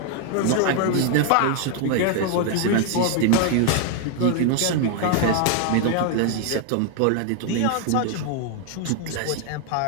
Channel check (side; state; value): both; different; correlation 0.00